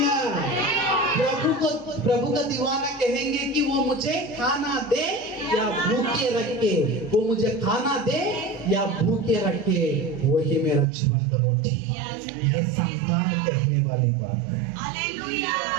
प्रभु का दीवाना कहेंगे कि वो मुझे खाना दे या भूखे रखे, वो मुझे खाना दे या भूखे रखे, वही मेरा जीवन का रोटी। ये संतान कहने वाली बात है। Hallelujah,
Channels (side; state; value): left; drops out; at 10.9 s